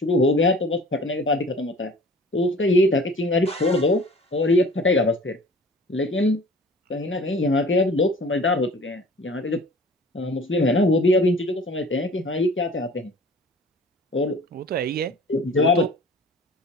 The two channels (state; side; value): normal; both; correlation 0.46